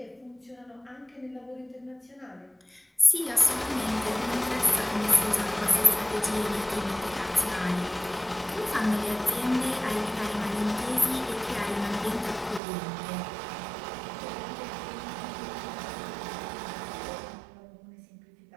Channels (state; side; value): drops out; left; at 12.6 s